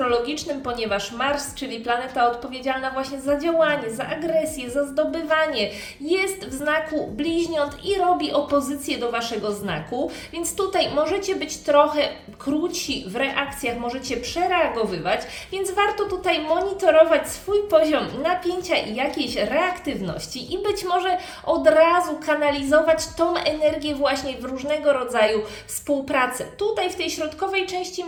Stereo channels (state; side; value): identical; both; correlation 1.00